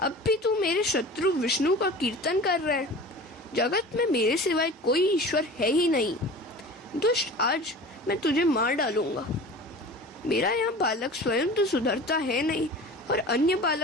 भी तू मेरे शत्रु विष्णु का कीर्तन कर रहा है। जगत में मेरे सिवाय कोई ईश्वर है ही नहीं। दुष्ट, आज मैं तुझे मार डालूंगा। मेरा यह बालक स्वयं तो सुधरता है नहीं और अन्य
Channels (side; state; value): both; normal; correlation 0.38